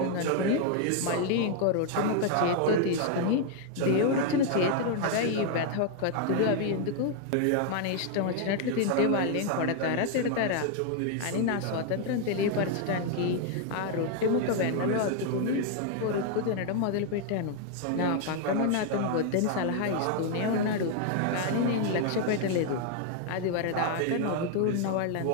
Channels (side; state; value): both; different; correlation 0.00